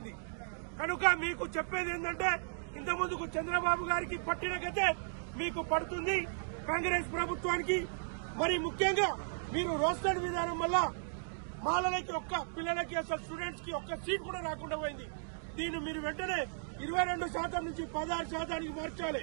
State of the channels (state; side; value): silent; left; digital silence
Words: కనుక మీకు చెప్పేది ఏంటంటే ఇంతకుముందుకు చంద్రబాబు గారికి పట్టిన గతే మీకు పడుతుంది కాంగ్రెస్ ప్రభుత్వానికి। మరి ముఖ్యంగా మీరు రోస్టర్ విధానం వల్ల మాలలకి పిల్లలకి అసలు స్టూడెంట్స్ కి ఒక్క సీట్ కూడా రాకుండా పోయింది। దీన్ని మీరు వెంటనే 22% నుంచి 16% మార్చాలి।